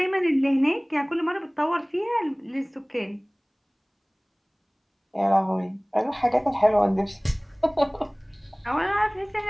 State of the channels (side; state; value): both; identical; correlation 1.00